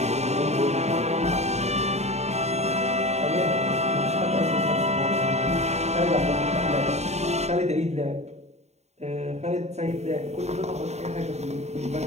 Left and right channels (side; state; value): left; late; 0.32 ms